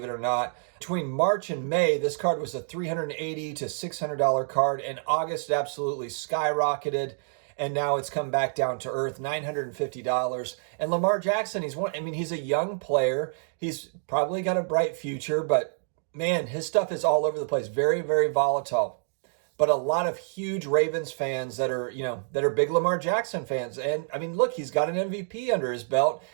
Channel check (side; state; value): left; silent; digital silence